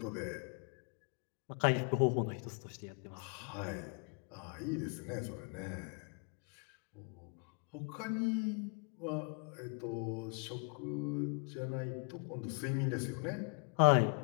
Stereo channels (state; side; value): quieter; right; 36.2 dB